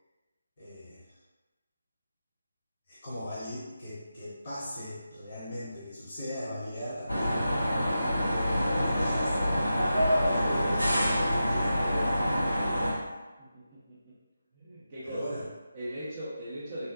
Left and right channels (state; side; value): inverted; both; correlation -0.90